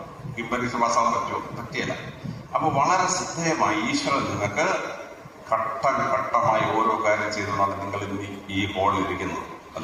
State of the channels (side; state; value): both; identical; correlation 1.00